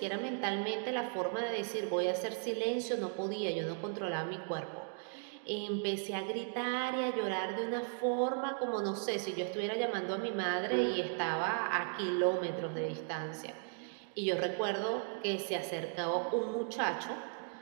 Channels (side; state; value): left; silent; 53 dB below the other